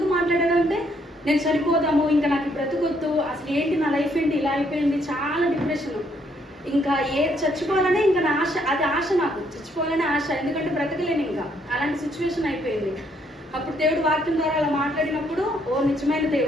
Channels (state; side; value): normal; both; correlation 0.70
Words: మాట్లాడాడంటే, నేను చనిపోదాము, ఇంకా నాకు బ్రతుకొద్దు, అసలు ఏంటి నా లైఫ్ ఏంటి ఇలా అయిపోయింది, చాలా డిప్రెషన్, ఇంకా చచ్చిపోవాలనే ఇంకా నా ఆశ, అది ఆశ, నాకు చచ్చిపోవాలనే ఆశ, ఎందుకంటే బ్రతకలేను ఇంకా, అలాంటి సిచ్యువేషన్ అయిపోయింది. అప్పుడు దేవుడు వాక్యం ద్వారా అలా మాట్లాడినప్పుడు, ఓ నిజమైన